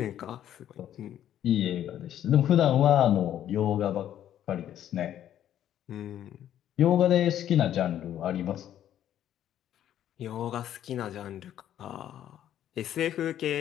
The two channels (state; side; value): quieter; right; 11.1 dB